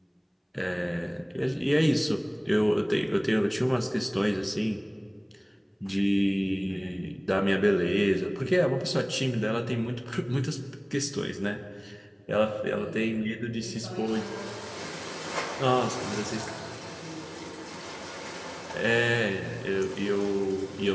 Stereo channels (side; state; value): both; identical; correlation 1.00